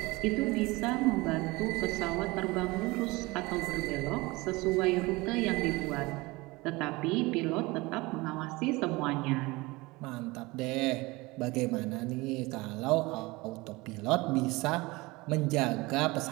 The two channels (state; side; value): quieter; left; 22.8 dB